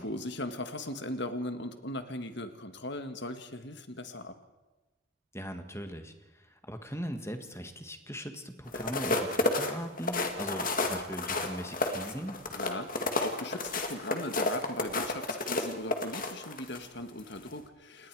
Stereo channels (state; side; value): normal; both; correlation 0.11